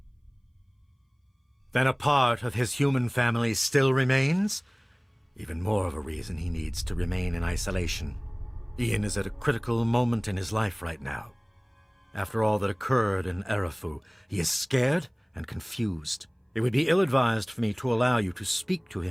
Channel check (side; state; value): both; identical; correlation 1.00